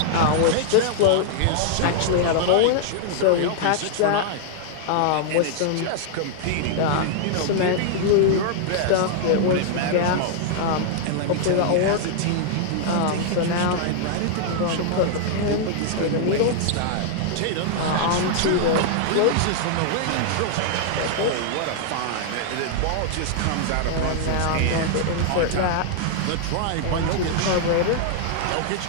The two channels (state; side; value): different; both; correlation -0.01